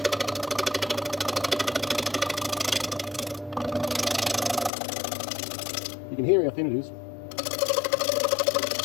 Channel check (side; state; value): right; drops out; at 4.7 s